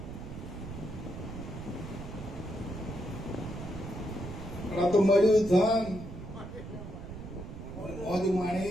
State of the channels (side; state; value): right; noise; rumble, 10 dB below the sound